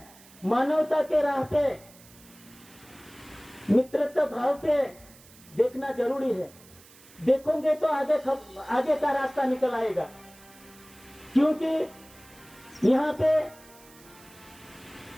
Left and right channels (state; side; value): noise; right; hiss, 23 dB below the sound